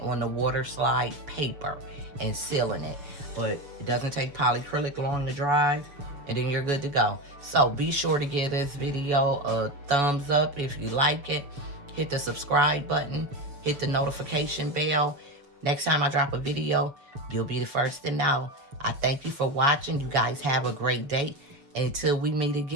the Waterslide paper and sealing it. But it doesn't take polyacrylic long to dry, and then you're good to go. So be sure to give this video a thumbs up if you like it. Hit the subscribe button, hit the notification bell. Next time I drop a video, you'll be the first to know. I thank you for watching. You guys have a great day. Until we meet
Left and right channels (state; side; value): late; left; 7.0 ms